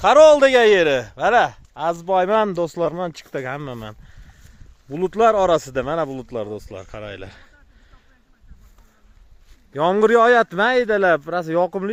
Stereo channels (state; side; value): identical; both; correlation 1.00